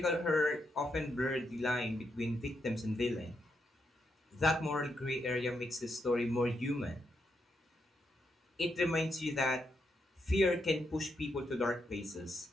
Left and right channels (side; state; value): both; normal; correlation 0.81